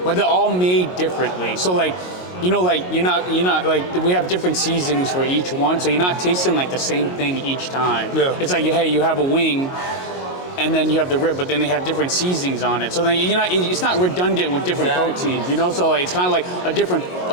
but they're all made differently. So, like, you know, like, you're not, like, we have different seasonings for each one, so you're not tasting, like, the same thing each time. Yeah. It's like, hey, you have a wing, and then you have the rib, but then they have different seasonings on it. So then it's not redundant with different proteins, you know? So like, it's kind of like a different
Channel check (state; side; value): late; right; 22 ms